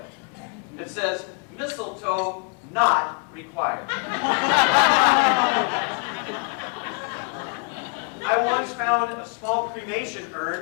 It says, mistletoe not required. I once found a small cremation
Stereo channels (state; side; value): quieter; right; 36.4 dB